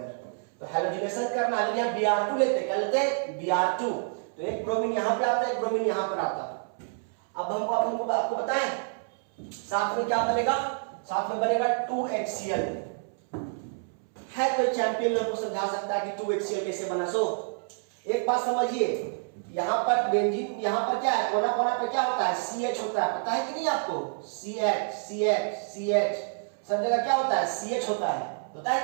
तो हैलोजिनेशन करना है, यहाँ Br2 लेते हैं, क्या लेते हैं, Br2। तो एक ब्रोमीन यहाँ पे आता है, एक ब्रोमीन यहाँ पर आता है। अब हमको आपको बताएं साथ में क्या बनेगा, साथ में बनेगा 2HCl। है कोई चैंपियन लोग को समझा सकता है कि 2HCl कैसे बना? सो एक बात समझिए, यहाँ पर बेंजीन, यहाँ पर क्या है, कोना कोना पर क्या होता है, CH होता है, पता है कि नहीं आपको? CH सब जगह क्या होता है, CH होता है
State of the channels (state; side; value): silent; left; 59 dB below the other